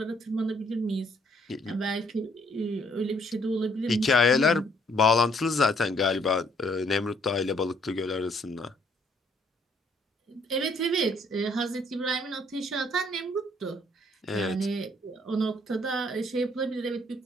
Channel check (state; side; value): normal; both; correlation 0.65